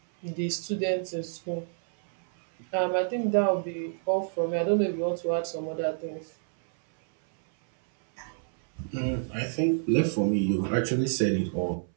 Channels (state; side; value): silent; left; 59 dB below the other